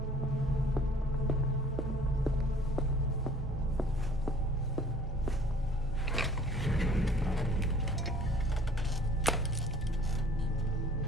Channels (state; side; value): normal; both; correlation 0.52